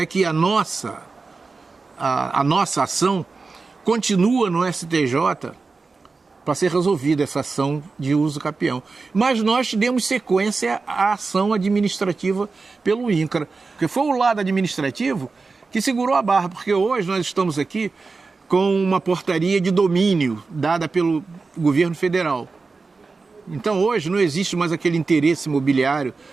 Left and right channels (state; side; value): quieter; left; 4.2 dB